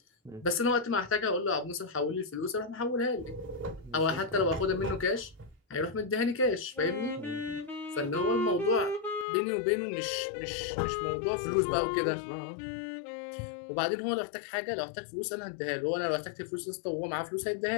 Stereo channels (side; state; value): right; drops out; at 9.2 s